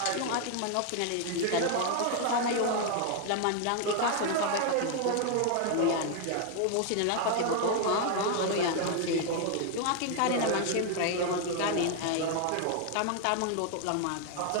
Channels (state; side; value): different; both; correlation 0.00